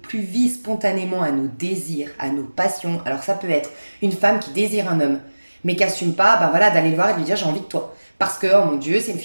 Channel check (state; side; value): inverted; both; correlation -1.00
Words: vie spontanément à nos désirs, à nos passions. Alors ça peut être une femme qui désire un homme, mais qui assume pas, ben voilà, d'aller le voir et de lui dire j'ai envie de toi. Parce que, oh mon Dieu, c'est une